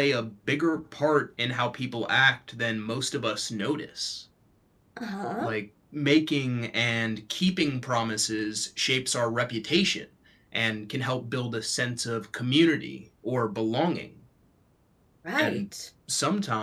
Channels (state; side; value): identical; both; correlation 1.00